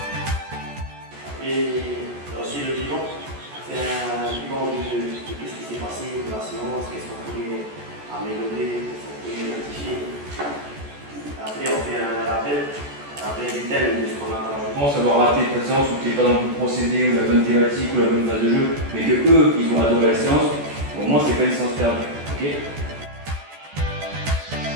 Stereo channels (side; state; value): left; late; 14 ms